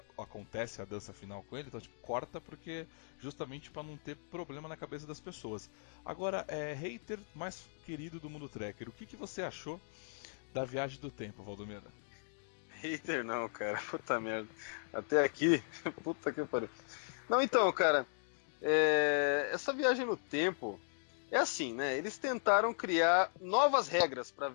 acontece a dança final com ele, então tipo, corta porque justamente para não ter problema na cabeça das pessoas. Agora, hater mais querido do mundo tracker, o que você achou da Viagem do Tempo, Valdomiro? Hater não, cara. Puta merda. Até aqui, puta que pariu. Não, então, cara, essa viagem no tempo é assim, né? Eles tentaram criar novas regras para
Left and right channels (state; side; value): silent; right; digital silence